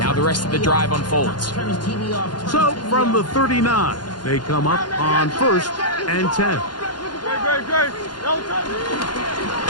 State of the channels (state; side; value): late; right; 0.71 ms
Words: Now the rest of the drive unfolds. So from the 39, they come up on 1st and 10.